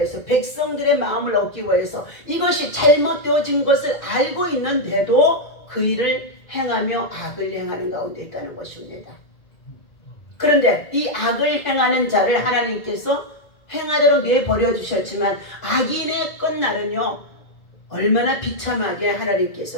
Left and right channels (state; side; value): late; right; 1.9 ms